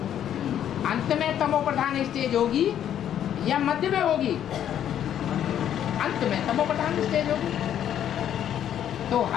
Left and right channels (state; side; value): quieter; right; 10.2 dB